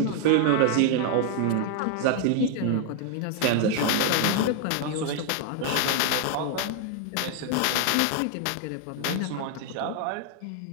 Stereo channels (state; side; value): different; both; correlation 0.00